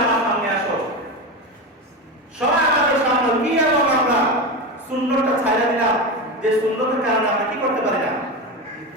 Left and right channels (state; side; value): normal; both; correlation 0.20